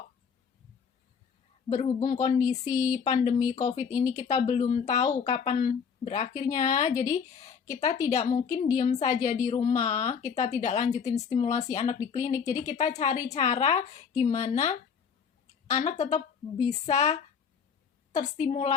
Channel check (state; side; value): quieter; right; 6.6 dB